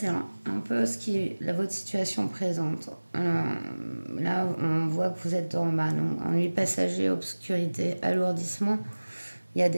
un peu votre situation présente. Là, on voit que vous êtes dans ennui passager, obscurité, alourdissement. Il y a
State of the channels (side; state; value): both; inverted; correlation -1.00